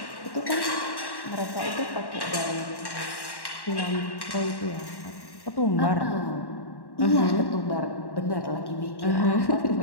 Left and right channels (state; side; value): late; right; 1.1 ms